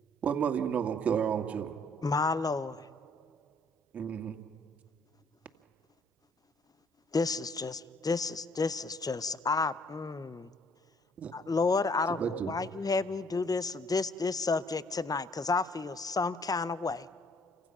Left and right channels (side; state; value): both; normal; correlation 0.61